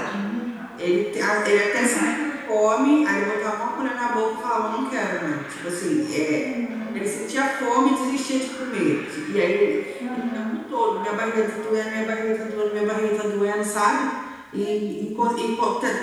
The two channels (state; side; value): identical; both; correlation 1.00